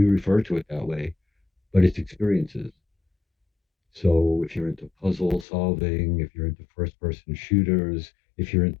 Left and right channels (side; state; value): right; drops out; at 5.5 s